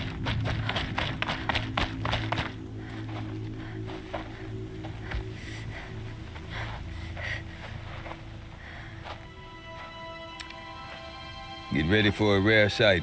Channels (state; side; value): identical; both; correlation 1.00